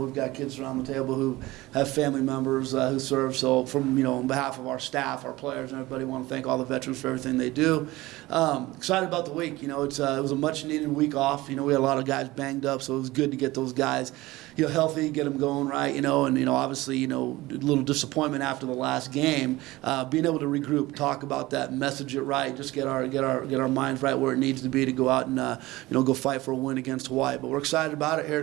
got kids around the table who have family members who serve. So, on behalf of our staff, our players, and everybody, want to thank all the veterans for everything they do. Excited about the week. It was a much needed week off. We had a lot of guys banged up, so it was good to get those guys, healthy, get them going right. And obviously, a little disappointment after the last game. Being able to regroup, talk about that, message it right, just get our minds right where it needs to be to go out and go fight for a win against Hawaii. But we're excited about it here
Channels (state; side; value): quieter; left; 19.1 dB